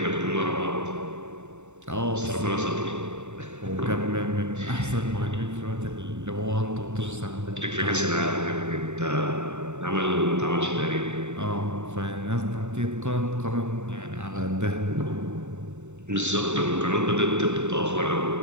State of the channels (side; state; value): left; late; 0.83 ms